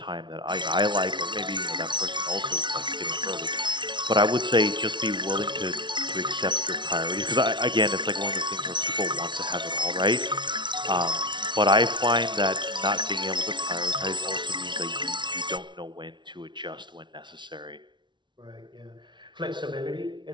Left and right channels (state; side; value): late; left; 0.23 ms